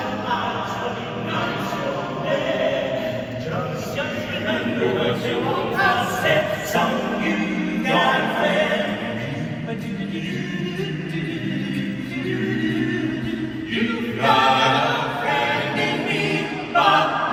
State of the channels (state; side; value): identical; both; correlation 1.00